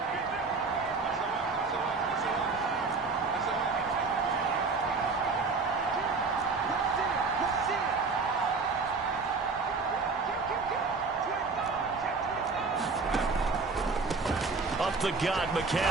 Up the gut,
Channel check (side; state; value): left; quieter; 4.3 dB